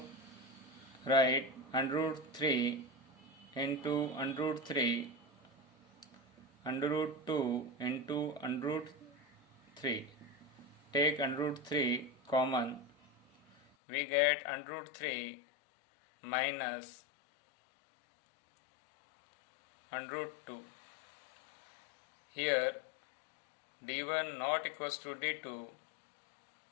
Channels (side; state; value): right; drops out; at 13.6 s